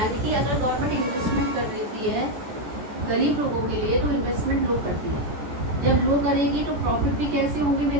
कि अगर गवर्नमेंट इन्वेस्टमेंट कर रही है गरीब लोगों के लिए तो इन्वेस्टमेंट लो करती है। जब लो करेगी तो प्रॉफिट भी कैसे होंगे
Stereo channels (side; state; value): left; late; 14 ms